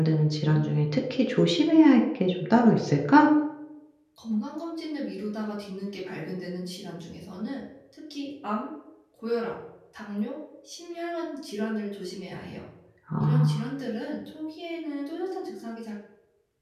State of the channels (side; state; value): both; identical; correlation 1.00